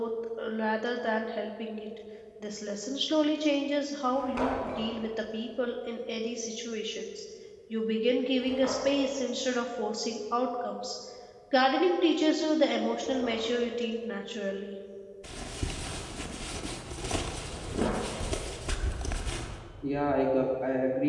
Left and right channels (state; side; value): identical; both; correlation 1.00